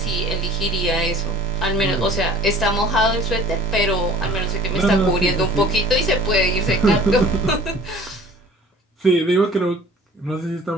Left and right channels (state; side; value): normal; both; correlation 0.47